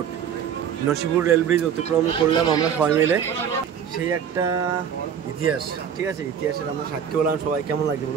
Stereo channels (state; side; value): quieter; left; 8.1 dB